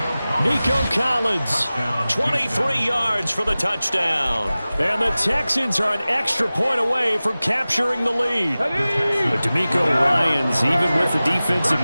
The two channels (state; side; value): inverted; both; correlation -0.97